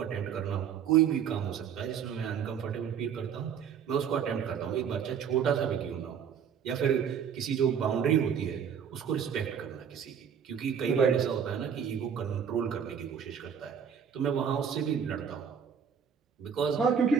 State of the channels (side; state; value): left; quieter; 7.7 dB